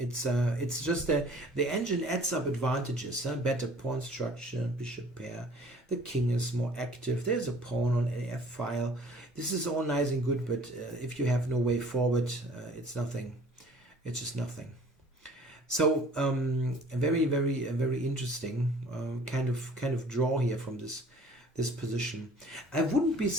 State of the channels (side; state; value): both; normal; correlation 0.51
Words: just the engine adds up advantages, better pawn structure, bishop pair, the king is more active, there's a pawn on a f file. This is all nice and good, but if you have no way forward, it's nothing. It's just nothing. So a very interesting kind of draw here from this position. I wouldn't be